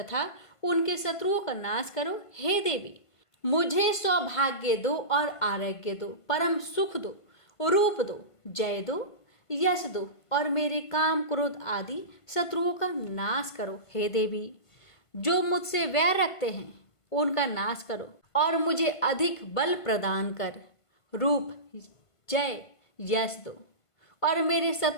उनके शत्रुओं का नाश करो। हे देवी, मुझे सौभाग्य दो और आरोग्य दो, परम सुख दो, रूप दो, जय दो, यश दो और मेरे काम क्रोध आदि शत्रुओं का नाश करो। हे देवी, जो मुझसे वैर रखते हैं उनका नाश करो और मुझे अधिक बल प्रदान कर रूप, जय, यश दो और मेरे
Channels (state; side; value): late; right; 1.5 ms